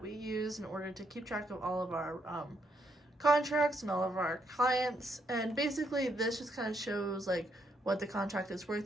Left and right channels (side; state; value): both; normal; correlation 0.75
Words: we use in order to keep track of all of our contracts and all of our clients. And basically this just kind of shows like what the contract is